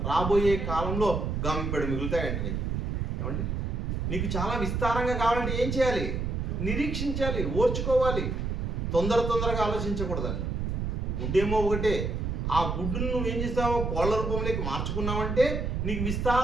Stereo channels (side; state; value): right; noise; rumble, 1 dB below the sound